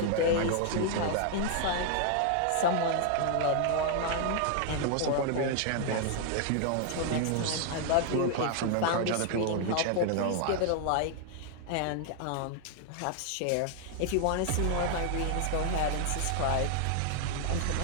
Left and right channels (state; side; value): different; both; correlation 0.00